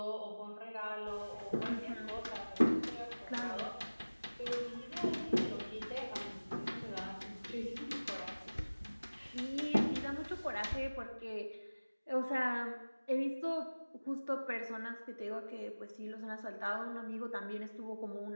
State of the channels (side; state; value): both; inverted; correlation -1.00